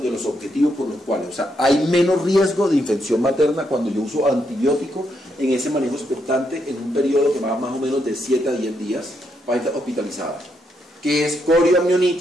los objetivos por los cuales, o sea, hay menos riesgo de infección materna cuando yo uso antibiótico en ese manejo expectante en un periodo que va más o menos de 7 a 10 días para estar hospitalizada, que es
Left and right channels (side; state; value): both; normal; correlation 0.78